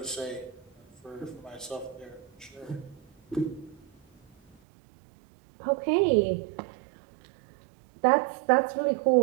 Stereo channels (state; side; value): drops out; left; at 4.5 s